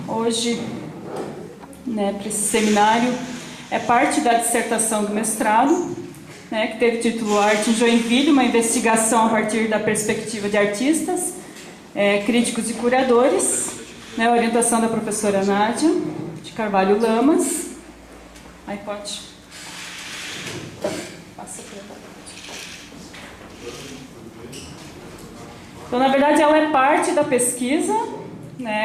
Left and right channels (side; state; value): both; identical; correlation 1.00